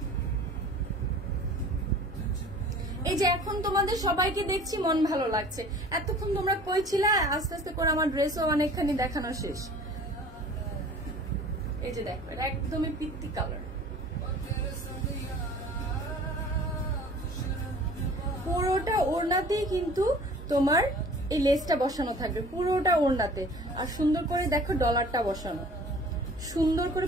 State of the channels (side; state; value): both; normal; correlation 0.46